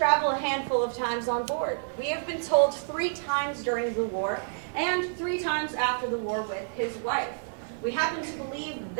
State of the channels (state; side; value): silent; left; digital silence